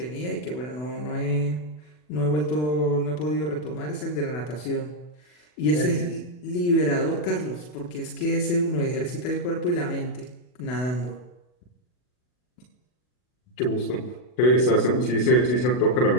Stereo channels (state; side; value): late; right; 40 ms